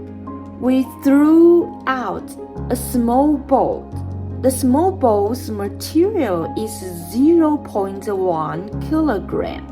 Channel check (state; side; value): identical; both; correlation 1.00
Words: we threw out a small ball. The small ball's material is 0.1 kilogram.